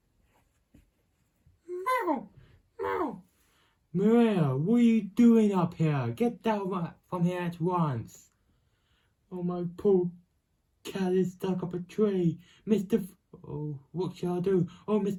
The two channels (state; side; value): identical; both; correlation 1.00